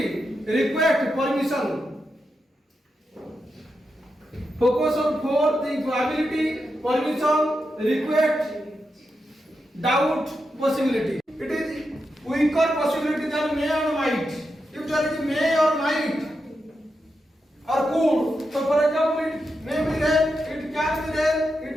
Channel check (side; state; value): both; normal; correlation 0.87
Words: request, permission. Focus on four things: ability, permission, request, doubt, possibility. It is weaker possibility than may or might. If there is may or might or could, so for example, it may be rain, it can be rain,